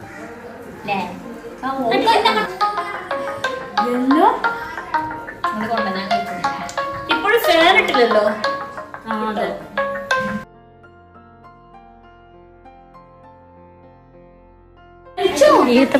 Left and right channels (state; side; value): identical; both; correlation 1.00